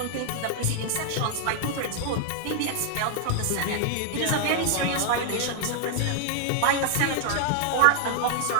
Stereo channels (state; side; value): different; both; correlation 0.00